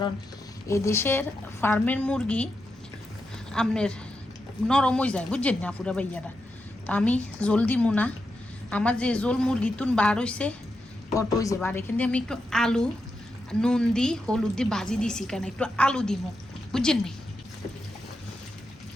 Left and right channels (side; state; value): both; normal; correlation 0.86